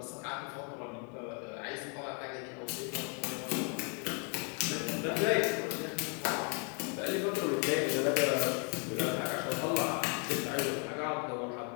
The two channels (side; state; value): right; quieter; 38.8 dB